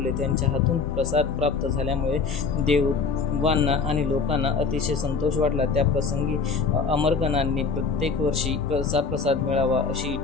त्यांच्या हातून प्रसाद प्राप्त झाल्यामुळे देवांना आणि लोकांना अतिशय संतोष वाटला. त्या प्रसंगी अमरगणांनी प्रत्येक वर्षी तसा प्रसाद मिळावा अशी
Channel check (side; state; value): right; quieter; 4.9 dB